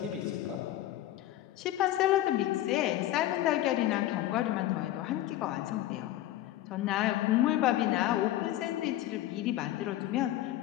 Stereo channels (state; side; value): quieter; right; 14.1 dB